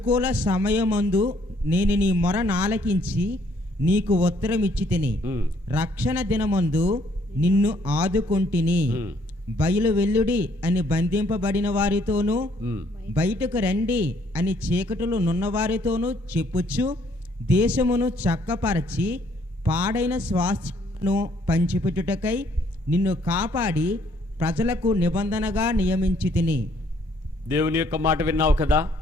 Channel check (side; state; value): both; normal; correlation 0.66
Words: సమయమందు నేను నీ మొర నాలకించి నీకు ఉత్తరం ఇచ్చితిని. రక్షణ దినమందు నిన్ను ఆదుకొంటిని. బయలు వెల్లుడి అని బంధింపబడిన వారితోనూ బయటకు రండి అని చీకటిలో నున్నవారితోనూ చెప్పుచ్చు దేశమును చక్కపరచి పాడైన స్వాస్థ్యమును పంచిపెట్టుటకై నిన్ను కాపాడి ప్రజలకు నిబంధనగా నియమించి తిని. దేవుని యొక్క మాట విన్నావు కదా,